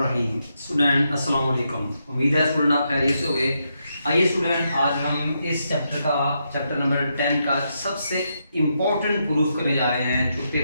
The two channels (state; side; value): inverted; both; correlation -0.82